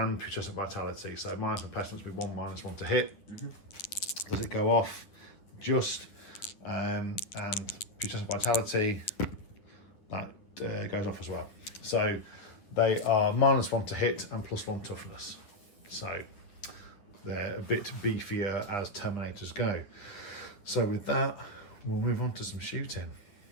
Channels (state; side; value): late; right; 9.8 ms